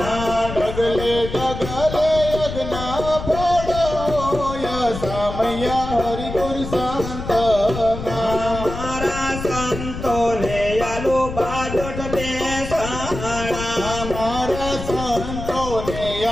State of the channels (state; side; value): noise; left; rumble, 8 dB below the sound